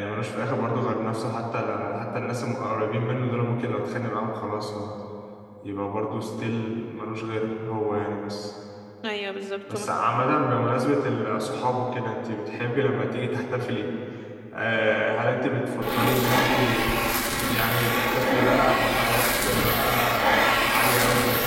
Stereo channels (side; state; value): both; identical; correlation 1.00